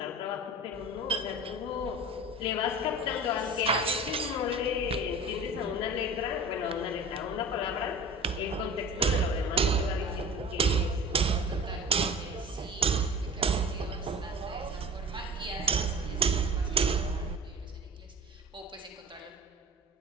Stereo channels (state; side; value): normal; both; correlation 0.38